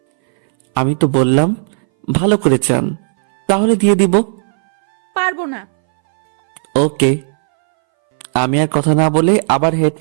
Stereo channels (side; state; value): left; silent; 64 dB below the other